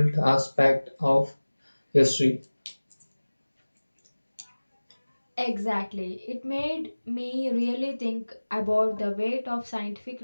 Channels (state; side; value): inverted; both; correlation -1.00